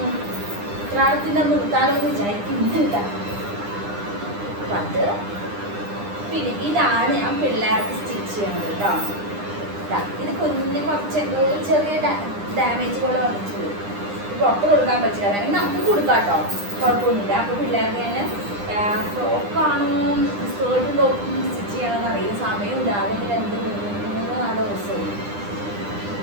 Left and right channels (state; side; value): late; left; 9.9 ms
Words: കാലത്തിൻ്റെ നിർത്താനൊന്ന് വിചാരിക്കുന്നുണ്ട്. അത് പിന്നെ ഇതാണ് ഞാൻ പിള്ളേർക്ക് സ്റ്റിച്ച് ചെയ്യണത് കേട്ടോ. ഇത് കുഞ്ഞിന് കുറച്ച് എന്തോ ചെറിയ ഡാമേജ് പോലെ വന്നിട്ടുണ്ട്. പുറത്ത് കൊടുക്കാൻ പറ്റില്ല, വേണമെങ്കിൽ നമുക്ക് കൊടുക്കാം കേട്ടോ, കുഴപ്പമൊന്നുമില്ല. അപ്പോൾ പിള്ളേർക്ക് ഞാൻ ഫ്രോക്കാണോ സ്കേർട്ടും ടോപ്പും സ്റ്റിച്ച് ചെയ്യണമെന്ന് അറിയില്ല. സമയമില്ല, അതെങ്കിൽ 2-3-4 ദിവസവും